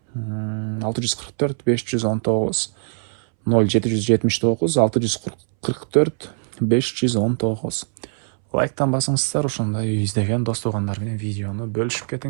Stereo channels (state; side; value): silent; left; 64 dB below the other